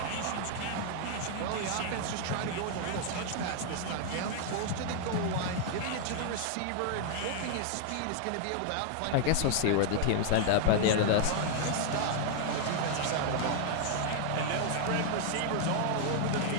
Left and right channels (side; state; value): both; different; correlation 0.00